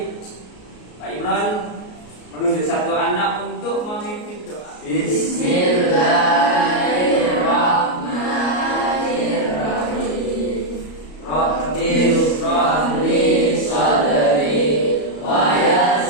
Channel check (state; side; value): late; right; 33 ms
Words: Pak Imran menunjuk satu anak untuk memimpin doa. Bismillahirrahmanirrahim. Rabbi shrah li sadri wa